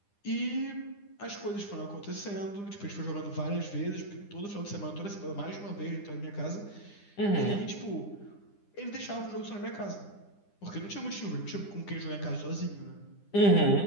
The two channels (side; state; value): right; late; 9.9 ms